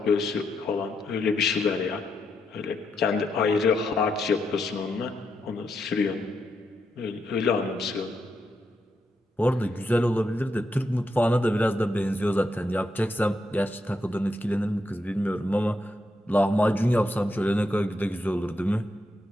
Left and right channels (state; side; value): normal; both; correlation 0.82